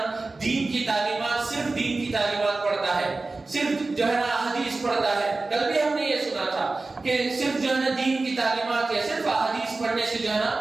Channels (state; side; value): quieter; left; 3.5 dB